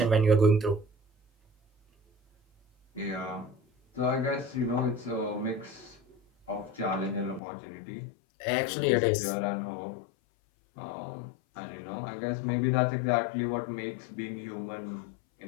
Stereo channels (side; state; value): right; drops out; at 7.4 s